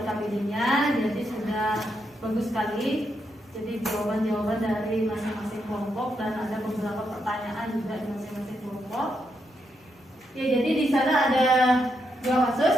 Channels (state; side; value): normal; both; correlation 0.81